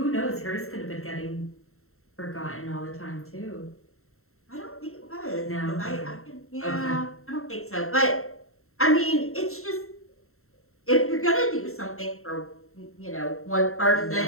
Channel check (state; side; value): late; right; 0.63 ms